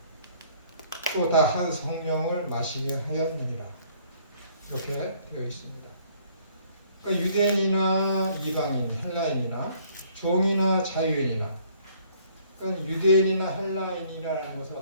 또 다 한 성령을 마시게 하였느니라. 이렇게 되어 있습니다. 그러니까 유대인이나 이방인, 헬라인이나 종이나 자유인이나 그러니까 유대인이나 헬라인이라는 것은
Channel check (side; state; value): both; inverted; correlation -0.61